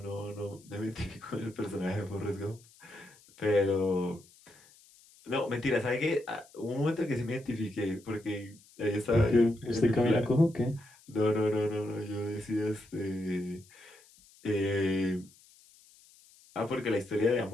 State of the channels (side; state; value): left; noise; hiss, 26 dB below the sound